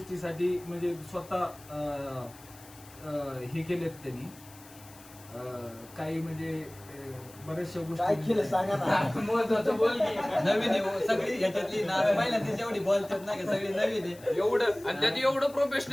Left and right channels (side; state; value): left; noise; hiss, 22 dB below the sound